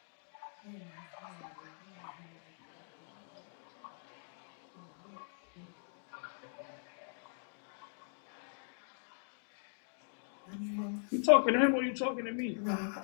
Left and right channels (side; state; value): right; silent; digital silence